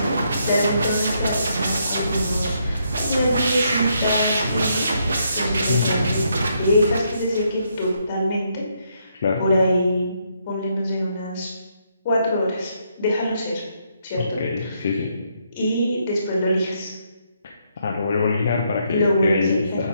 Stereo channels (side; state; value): both; inverted; correlation -0.75